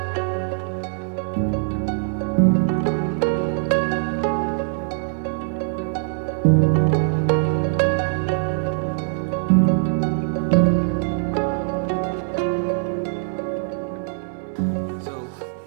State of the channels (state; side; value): silent; left; digital silence